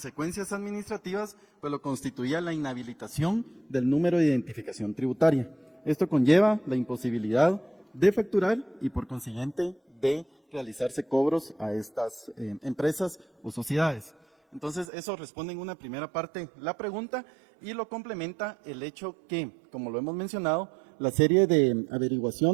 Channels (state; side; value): drops out; left; at 14.9 s